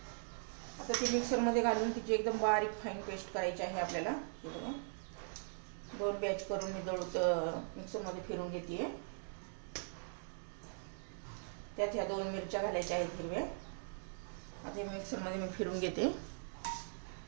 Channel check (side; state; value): left; silent; digital silence